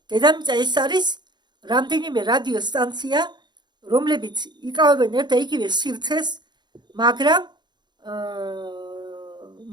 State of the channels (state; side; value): late; left; 0.21 ms